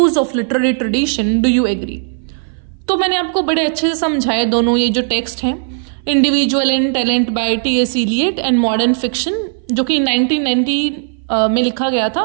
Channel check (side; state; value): left; silent; 60 dB below the other